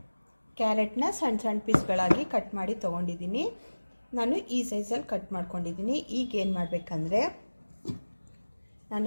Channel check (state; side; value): inverted; both; correlation -1.00